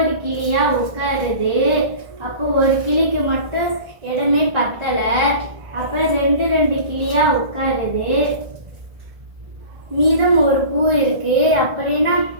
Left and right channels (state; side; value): late; left; 1.6 ms